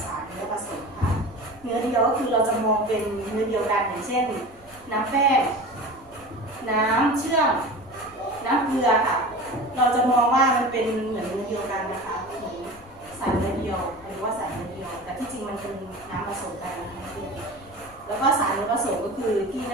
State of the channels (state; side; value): noise; left; rumble, 25 dB below the sound